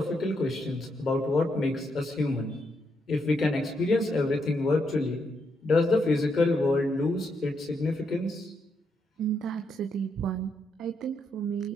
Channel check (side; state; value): both; normal; correlation 0.79